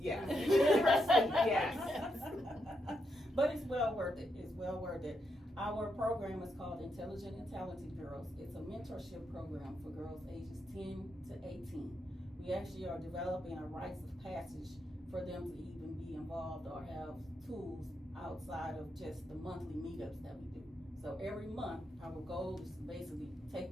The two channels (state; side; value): normal; both; correlation 0.81